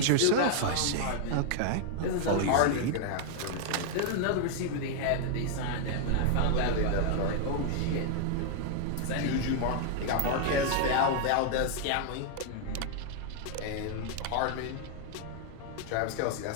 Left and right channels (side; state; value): both; different; correlation 0.00